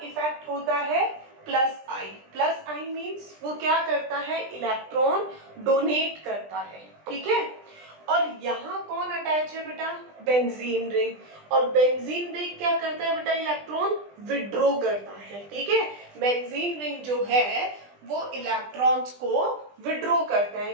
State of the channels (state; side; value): late; left; 20 ms